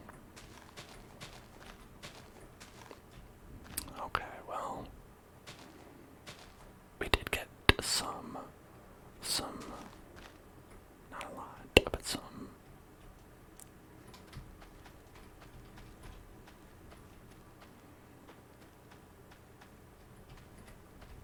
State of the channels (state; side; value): identical; both; correlation 1.00